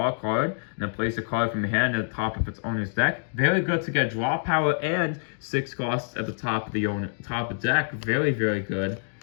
a card, and then place a card from your hand at the top of its owner's deck. Very good to get draw power and 6 costs at the top of the top of the deck. Very, very good.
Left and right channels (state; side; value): silent; right; digital silence